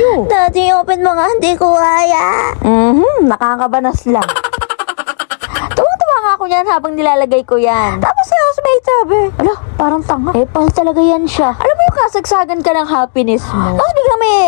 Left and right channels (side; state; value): right; silent; digital silence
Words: Daddy, open mo nga, hindi ko kaya. Nakakabanas lang. Tuwa-tuwa nga ako yan habang nilalagay ko yan. Tapos si housemate sabi, ala, parang tanga. Epal talaga yan siya. Alam mo yung kasagsagan ka ng happiness mo. Tapos biglang may